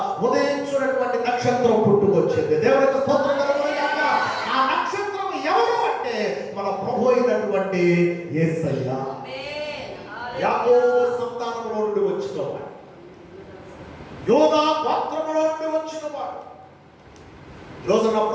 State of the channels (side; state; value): both; identical; correlation 1.00